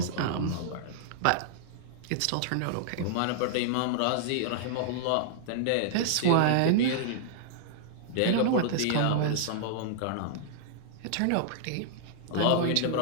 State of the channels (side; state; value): both; different; correlation -0.01